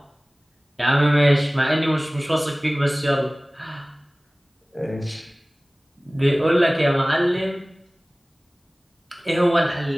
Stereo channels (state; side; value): normal; both; correlation 0.98